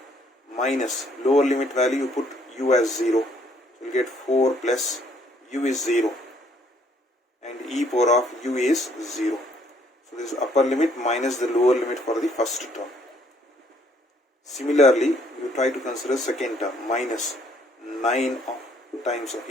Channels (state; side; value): normal; both; correlation 0.65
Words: minus lower limit value, you put u as 0. So you will get 4 plus u is 0 and e power of u is 0. So this is upper limit minus the lower limit for the first term. Similarly, you try to consider second term, minus 9 times of,